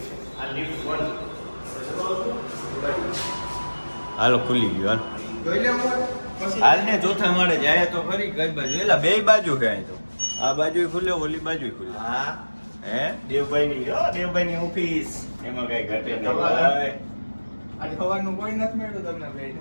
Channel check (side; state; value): both; inverted; correlation -1.00